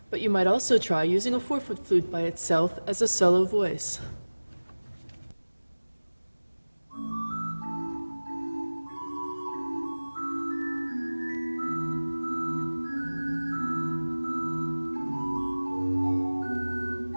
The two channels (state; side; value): inverted; both; correlation -1.00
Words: but you might also try using a 4-foot flute by itself as a solo voice.